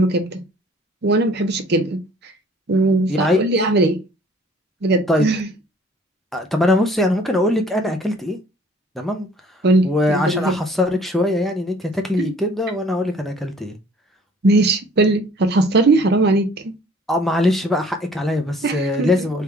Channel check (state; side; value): normal; both; correlation 0.54